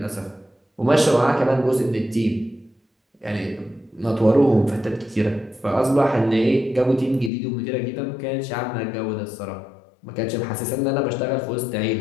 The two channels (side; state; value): right; drops out; at 7.3 s